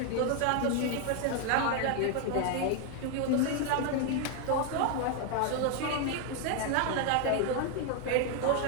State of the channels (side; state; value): both; different; correlation 0.01